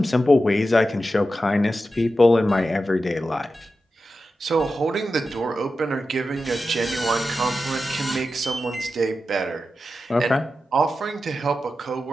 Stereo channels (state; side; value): normal; both; correlation 0.91